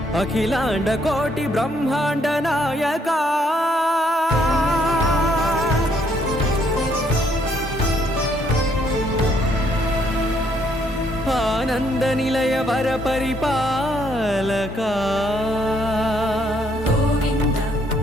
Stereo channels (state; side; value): normal; both; correlation 0.70